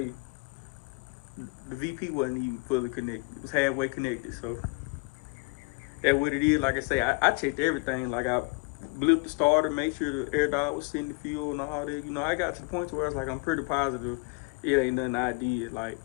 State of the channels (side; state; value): right; quieter; 30.3 dB